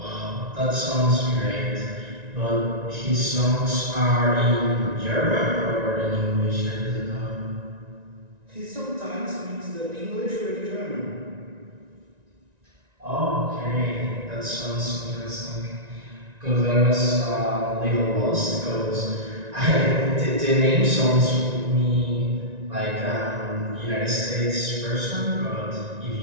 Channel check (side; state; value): left; late; 1.9 ms